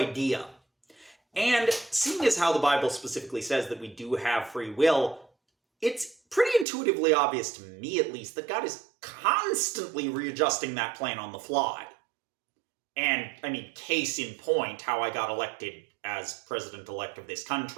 And seeing as how the Bible specifically says that we do have free will, it's pretty intuitively obvious to me, at least, that God is constantly readjusting that plan on the fly. And, I mean, case in point, how I got elected as president-elect of this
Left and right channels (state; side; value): drops out; left; at 6.7 s